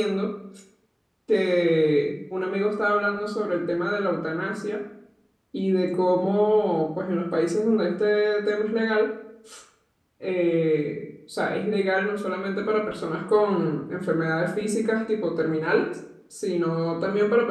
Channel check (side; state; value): both; identical; correlation 1.00